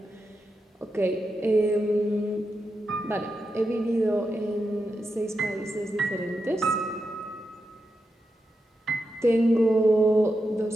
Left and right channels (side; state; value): both; normal; correlation 0.88